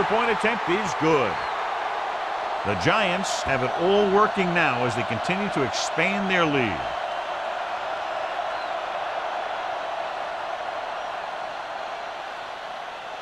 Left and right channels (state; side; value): identical; both; correlation 1.00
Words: point attempt is good. The Giants have it all working now as they continue to expand their lead.